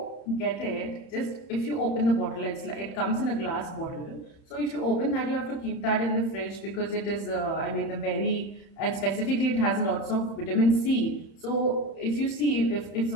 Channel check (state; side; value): late; right; 31 ms